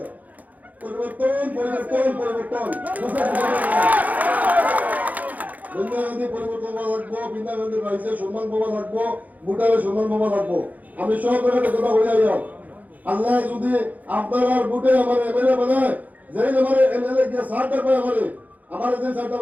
পরিবর্তন পরিবর্তন পরিবর্তন বৃন্দাবন্দি পরিবর্তন হওয়া লাগবো বৃন্দাবন্দির রাইজের সম্মান পাওয়া লাগবো ভুটানের সম্মান পাওয়া লাগবো আমি সব জায়গাতে কথা বলে যাই আল্লাহ যদি আপনারা ভোটে আমার এমএলএ বানায় যেই আমার এমএলএ গিয়ে 60 টাকা পায় আমার যে 60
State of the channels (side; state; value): left; late; 0.078 ms